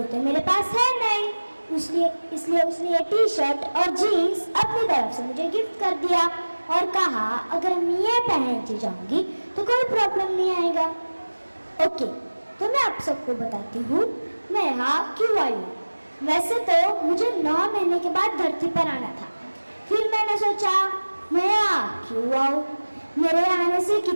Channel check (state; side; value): inverted; both; correlation -1.00